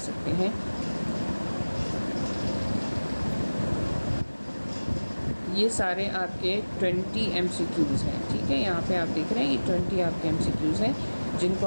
हैं। ये सारे आपके 20 MCQs हैं, ठीक है, यहाँ पे आप देख रहे हैं ये 20 आपके MCQs हैं जिनको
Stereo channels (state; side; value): inverted; both; correlation -1.00